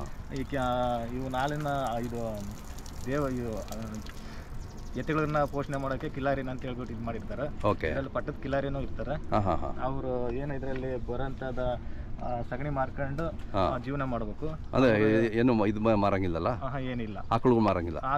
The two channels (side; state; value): both; identical; correlation 1.00